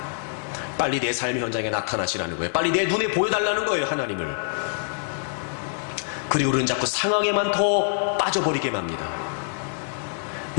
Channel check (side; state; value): right; silent; digital silence